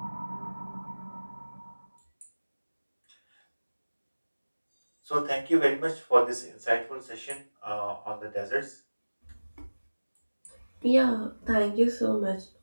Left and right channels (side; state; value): both; inverted; correlation -1.00